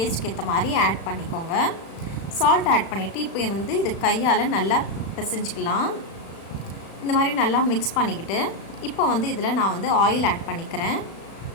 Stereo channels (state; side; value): late; right; 36 ms